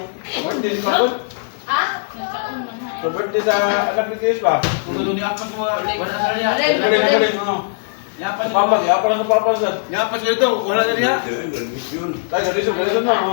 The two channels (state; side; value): silent; right; digital silence